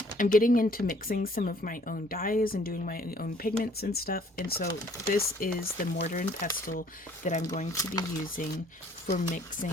I'm getting into mixing some of my own dyes and doing my own pigments and stuff. And so this is the mortar and pestle that I'm going to be using for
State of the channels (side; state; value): both; normal; correlation 0.58